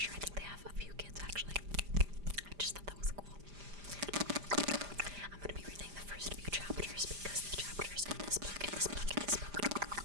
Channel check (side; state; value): left; late; 5.0 ms